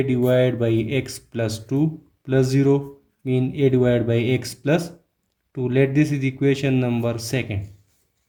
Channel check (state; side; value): identical; both; correlation 1.00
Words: divided by x plus 2 plus 0, mean a divided by x plus 2. Let this is equation number 2.